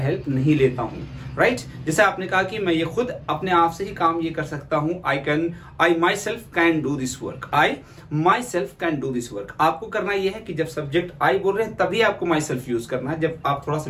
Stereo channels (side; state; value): both; identical; correlation 1.00